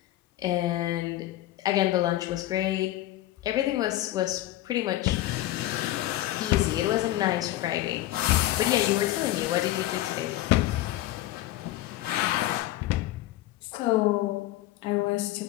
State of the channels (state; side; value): quieter; right; 15.3 dB